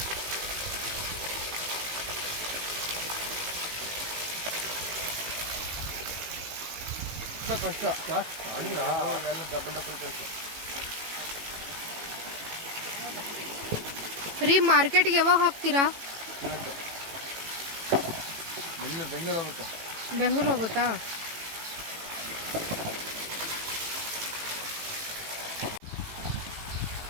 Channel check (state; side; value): late; left; 18 ms